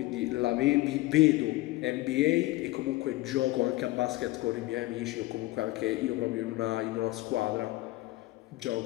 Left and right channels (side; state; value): right; quieter; 19.0 dB